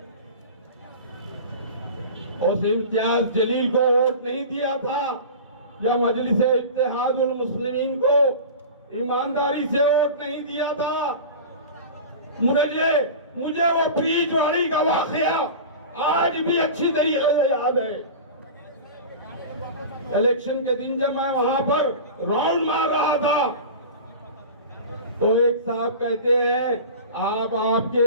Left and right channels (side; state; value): both; inverted; correlation -0.33